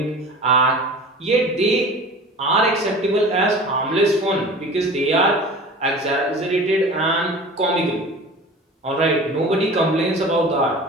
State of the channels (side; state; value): both; normal; correlation 0.39